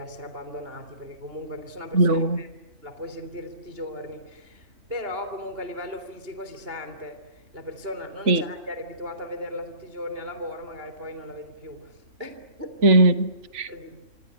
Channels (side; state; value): left; late; 2.8 ms